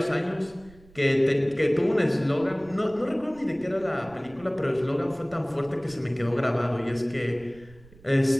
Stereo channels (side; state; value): right; noise; rumble, 24 dB below the sound